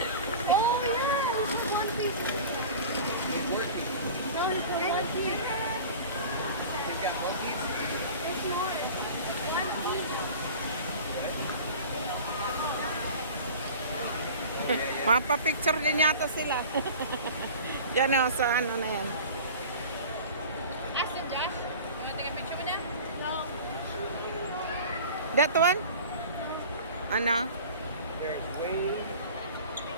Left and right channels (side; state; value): both; inverted; correlation -0.39